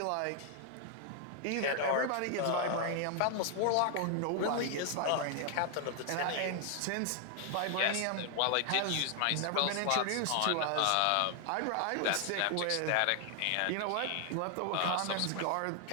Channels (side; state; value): both; different; correlation 0.00